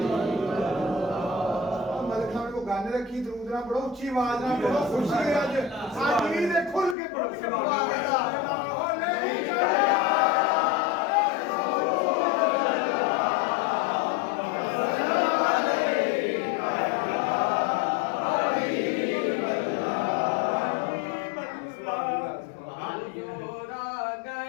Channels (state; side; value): drops out; right; at 7.0 s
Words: गाने रखी दरूद ना पढ़ो उच्ची आवाज ना पढ़ो खुशी है आज आज भी खुल के पढ़ो।